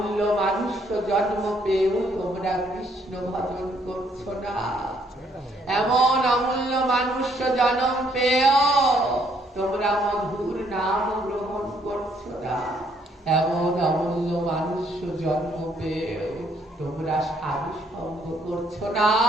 মানুষ মনুষ্য জন্ম পেয়েও তোমরা কৃষ্ণ ভজন করছো না। এমন অমূল্য মনুষ্য জন্ম পেয়েও তোমরা মধুর নাম গ্রহণ করছো না। এমন অমূল্য মনুষ্য জন্ম পেয়েও তোমরা সাধু সঙ্গ করছো না।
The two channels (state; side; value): normal; both; correlation 0.68